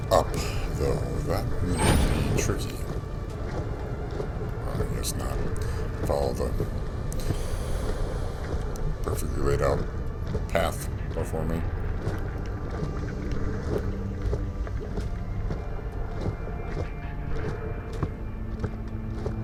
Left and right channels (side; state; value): both; identical; correlation 1.00